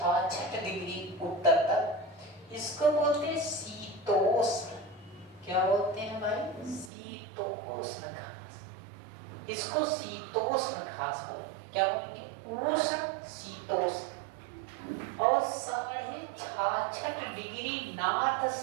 डिग्री उत्तर तक, इसको बोलते हैं शीतोष्ण। क्या बोलते हैं भाई? शीतोष्ण घास। इसको शीतोष्ण घास बोलेंगे। क्या बोलेंगे? उष्ण, शीतोष्ण। और 66.5 डिग्री नॉर्थ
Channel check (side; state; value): left; drops out; at 6.9 s